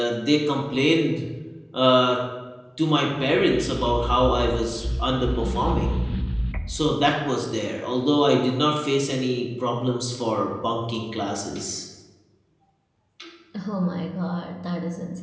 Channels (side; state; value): both; identical; correlation 1.00